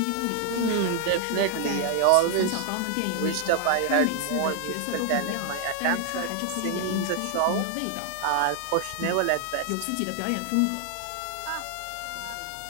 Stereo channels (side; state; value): both; different; correlation 0.00